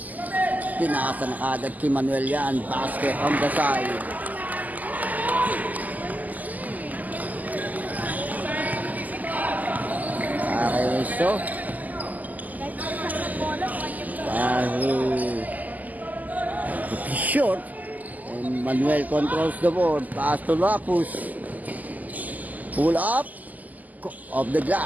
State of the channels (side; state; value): left; late; 0.080 ms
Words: Tinasa na agad kay Manuel yan. Basket on the side. Okay, so short. And Manuel controls the board. Pass to Lapus. Pull up. Of the